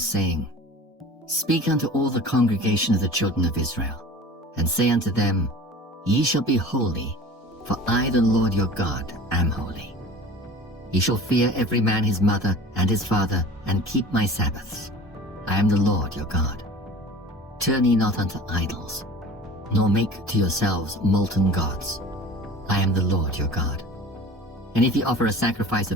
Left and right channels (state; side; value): normal; both; correlation 0.40